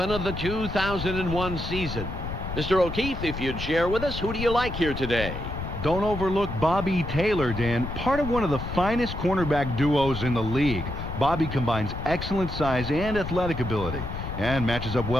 of the 2001 season. Mr. O'Keefe, if you'd share with us, who do you like here today? Don't overlook Bobby Taylor, Dan. Part of one of the finest cornerback duos in the league. Bobby combines excellent size and athletic ability and matches up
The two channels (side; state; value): left; noise; rumble, 7 dB below the sound